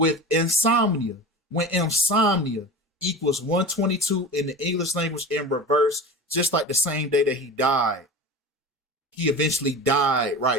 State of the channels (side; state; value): both; normal; correlation 0.32